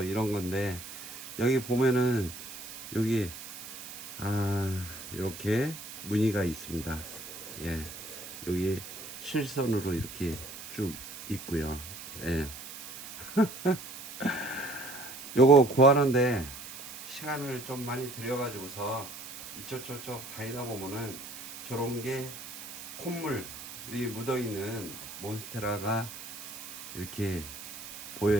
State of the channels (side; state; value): right; noise; hiss, 12 dB below the sound